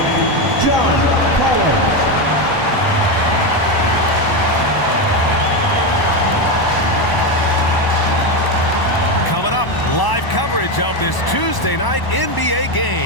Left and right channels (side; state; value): right; late; 1.0 ms